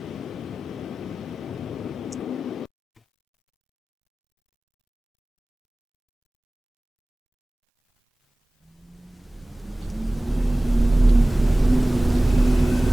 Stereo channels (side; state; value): both; normal; correlation 0.98